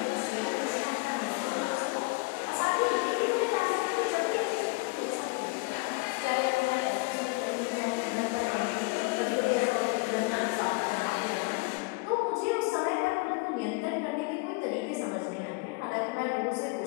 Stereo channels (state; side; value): quieter; right; 27.6 dB